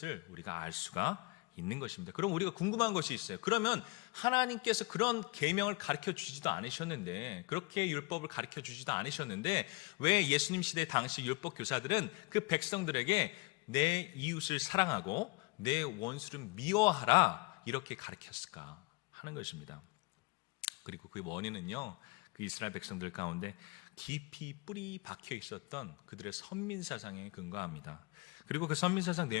우리가 알 수가 있는 것입니다. 그럼 우리가 궁금한 것이 있어요. 그러면 하나님께서 그런 계명을 가르쳐 주지도 않으셨는데, 그렇게 율법을 가르쳐 주지도 않으셨는데 왜 예수님 시대 당시 율법 교사들은 그 백성들에게 내 이웃을 사랑하고 내 원수를 미워하라 이렇게 가르쳤을까 하는 것입니다. 그리고 그 원인은요, 그 이스라엘 백성들 가운데 깊이 뿌리 박혀 있었던 그들의 선민사상에 근거합니다. 그리고 그 선민사상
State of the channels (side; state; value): right; quieter; 25.8 dB